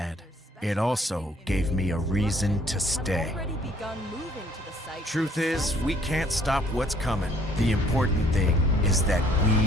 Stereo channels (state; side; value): normal; both; correlation 0.61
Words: It also gave me a reason to stay. Truth is, we can't stop what's coming. The important thing is that